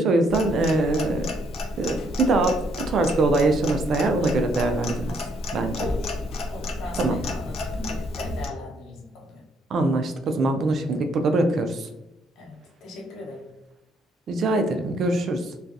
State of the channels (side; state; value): both; normal; correlation 0.70